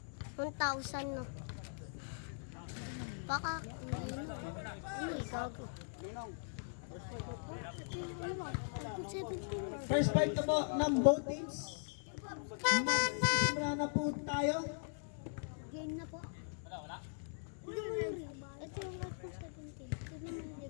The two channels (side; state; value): right; silent; digital silence